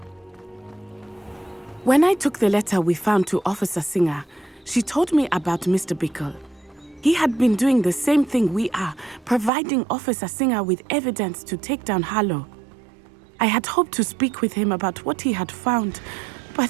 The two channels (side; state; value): left; drops out; at 9.5 s